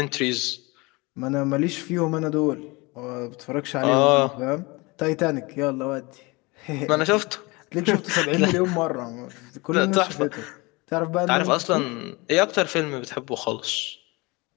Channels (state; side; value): quieter; right; 25.1 dB